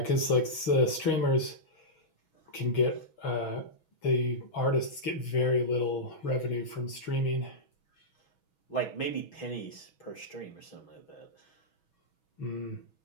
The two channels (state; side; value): late; right; 6.2 ms